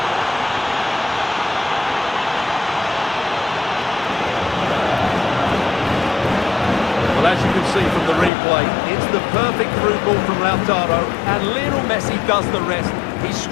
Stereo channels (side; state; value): right; drops out; at 8.3 s